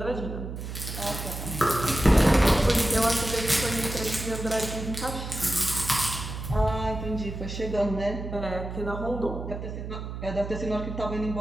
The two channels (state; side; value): noise; right; hum, 7 dB below the sound